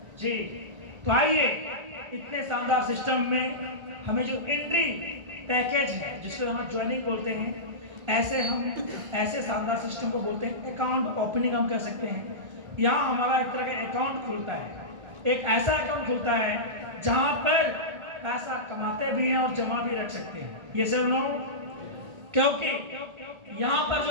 जी, तो आइए इतने शानदार सिस्टम में हमें जो एंट्री पैकेज है, जिसको हम ज्वाइनिंग बोलते हैं, ऐसे शानदार सिस्टम को बोलते हैं अकाउंट ओपनिंग हम कह सकते हैं। यहाँ हमारा एक तरह का अकाउंट खुलता है, एक ऐसा अकाउंट खुलता है जहाँ पर पैसा कमाते भी हैं और जमा भी रख सकते हैं। ये सब लोग, क्योंकि यहाँ पर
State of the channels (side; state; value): left; late; 1.4 ms